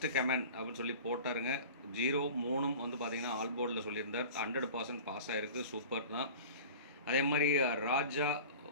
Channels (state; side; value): inverted; both; correlation -0.39